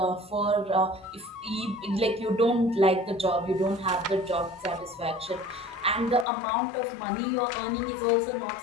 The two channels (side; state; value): right; drops out; at 6.2 s